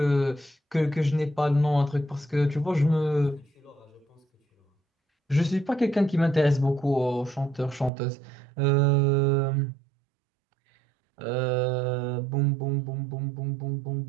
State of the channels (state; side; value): drops out; left; at 7.9 s